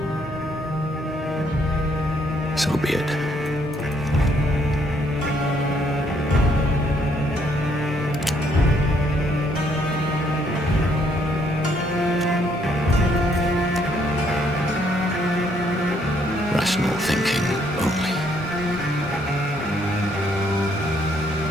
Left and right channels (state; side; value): normal; both; correlation 0.69